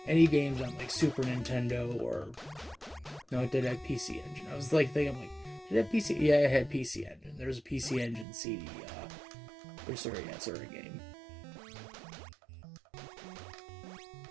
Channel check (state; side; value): drops out; left; at 8.2 s